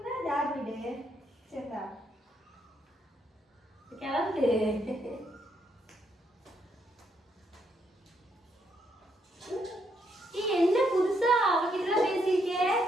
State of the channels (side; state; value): both; normal; correlation 0.75